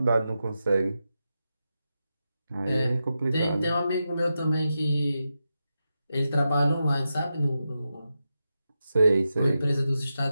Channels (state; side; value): inverted; both; correlation -0.89